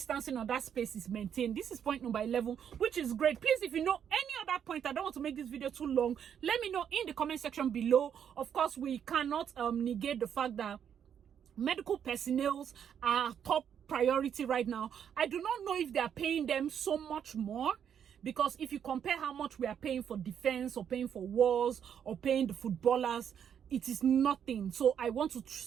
or that space is maintained. This is point number 11, which is great. Please, if you know any other point, I don't want to make this video too long, let me know in the comment section below. Of course, we cannot negate the fact that medical personnel are top priority right now. I do not know if they are paying them so much more, because if you compare how much we are paying for defense or paying for wars or paying the footballers, it is nothing. So I want to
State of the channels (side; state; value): left; quieter; 8.5 dB